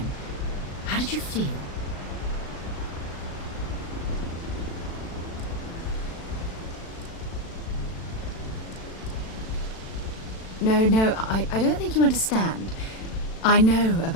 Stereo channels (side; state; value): right; late; 36 ms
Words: how did you feel? No, I don't think you understand. I know